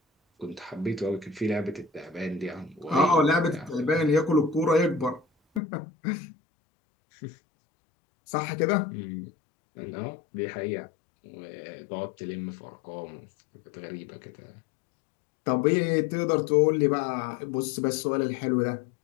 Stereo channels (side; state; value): right; drops out; at 5.6 s